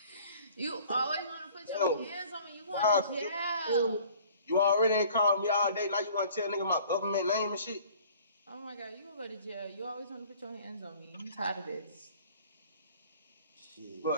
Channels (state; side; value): inverted; both; correlation -0.51